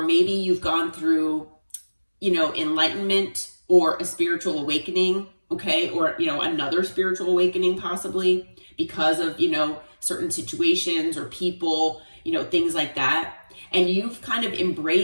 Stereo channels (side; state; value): both; inverted; correlation -1.00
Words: maybe you've gone through, you know, enlightenment or a spiritual awakening. Okay. Or, you know, another spiritual awakening possibly because of, you know, certain situations or people, you know, things like that. And you've kind of